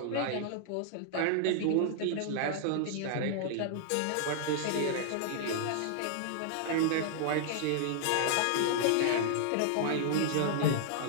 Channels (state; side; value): different; both; correlation -0.01